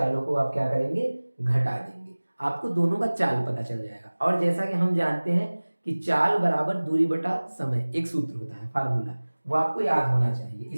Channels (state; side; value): inverted; both; correlation -1.00